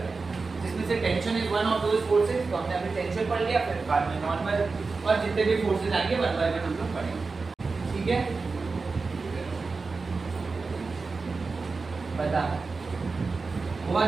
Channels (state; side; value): quieter; left; 4.2 dB